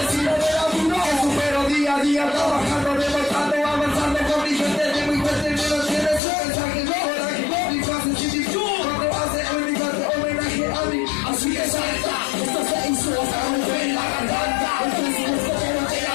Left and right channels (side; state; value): right; drops out; at 6.2 s